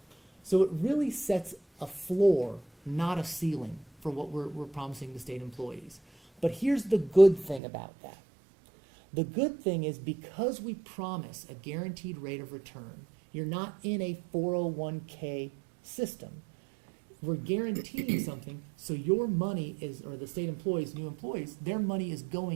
So it really sets a floor, not a ceiling, for what we're promising to state employees. But here's the good thing about that. The good thing is because we promise a guaranteed rate of return, you're not in a 401k system. We're guaranteeing something, so your money is, or the state employees, new employees, their money is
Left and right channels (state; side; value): drops out; left; at 7.6 s